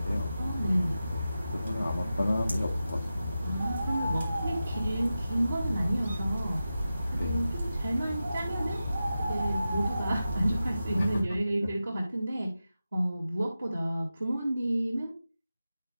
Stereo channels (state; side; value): inverted; both; correlation -0.92